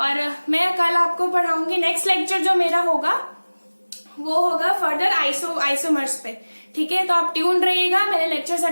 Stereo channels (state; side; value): inverted; both; correlation -1.00